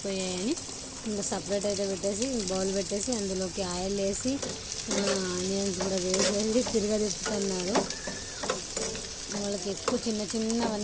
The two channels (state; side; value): identical; both; correlation 1.00